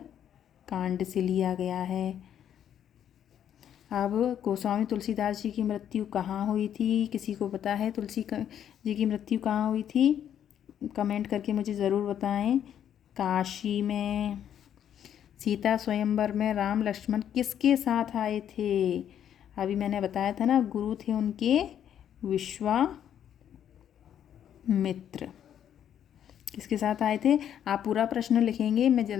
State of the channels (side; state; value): right; quieter; 9.7 dB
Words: कांड से लिया गया है। अब गोस्वामी तुलसीदास जी की मृत्यु कहाँ हुई थी, किसी को पता है तुलसी जी की मृत्यु कहाँ हुई थी, कमेंट करके मुझे ज़रूर बताएं। काशी में। सीता स्वयंवर में राम लक्ष्मण किसके साथ आए थे। अभी मैंने बताया था ना, गुरु थे उनके विश्वामित्र। किसके साथ आए थे। आप पूरा प्रश्न लिखेंगे, मैं